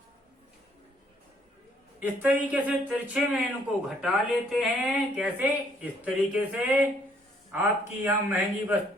इस तरीके से तिरछे में इनको घटा लेते हैं। कैसे? इस तरीके से आपकी यहाँ महंगी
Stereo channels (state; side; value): normal; both; correlation 0.66